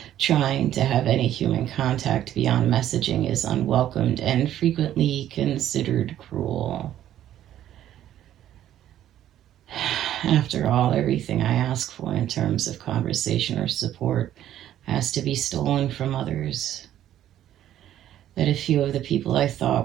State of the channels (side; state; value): left; quieter; 11.8 dB